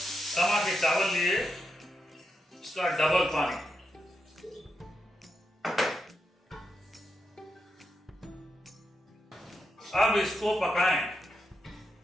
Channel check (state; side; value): normal; both; correlation 0.84